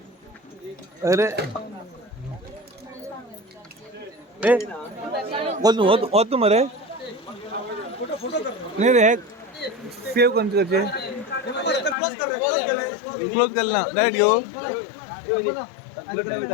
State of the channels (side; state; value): right; drops out; at 12.0 s